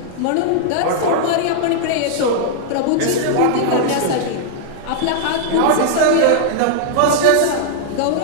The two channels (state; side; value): different; both; correlation -0.01